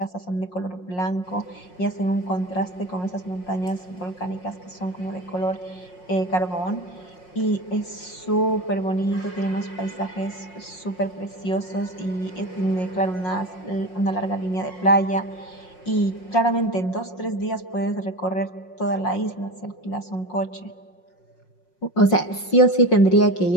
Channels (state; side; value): late; right; 5.5 ms